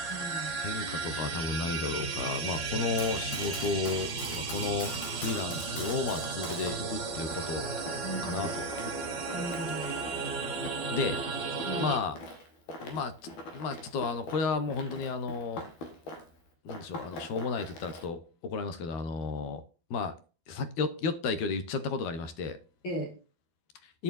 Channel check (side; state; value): right; late; 12 ms